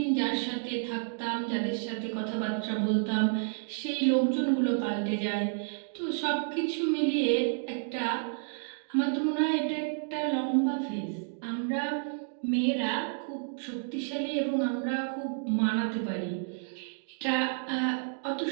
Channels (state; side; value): silent; left; digital silence